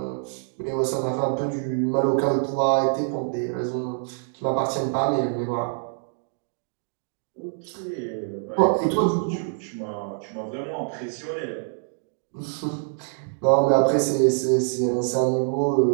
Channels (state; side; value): silent; left; digital silence